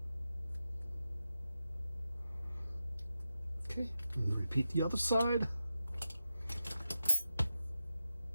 Okay, and repeat the other side.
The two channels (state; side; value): inverted; both; correlation -0.90